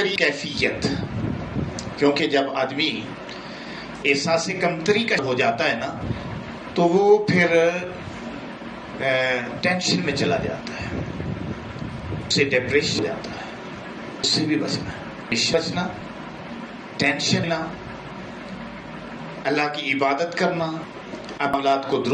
کیفیت، کیونکہ جب آدمی احساس کمتری کا ہو جاتا ہے نا تو وہ پھر ٹینشن میں چلا جاتا ہے، اسے ڈپریشن ہو جاتا ہے. اس سے بھی بچنا ٹینشن نہ، اللہ کی عبادت کرنا، عملات کو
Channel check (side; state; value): both; identical; correlation 1.00